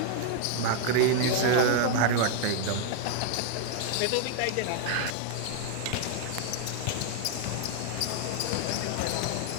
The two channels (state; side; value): different; both; correlation 0.00